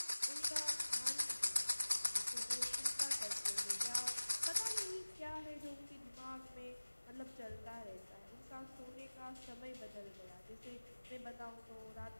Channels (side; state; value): both; inverted; correlation -1.00